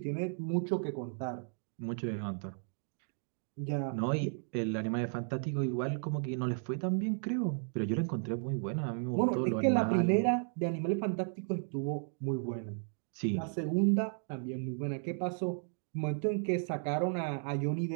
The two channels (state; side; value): silent; left; 55 dB below the other